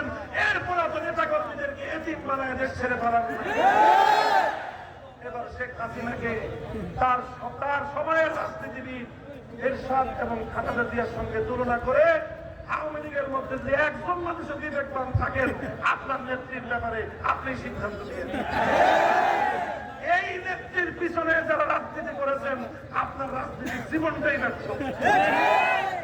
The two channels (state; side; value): identical; both; correlation 1.00